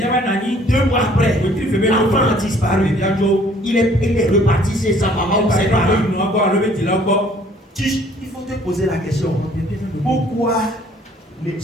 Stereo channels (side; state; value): both; normal; correlation 0.58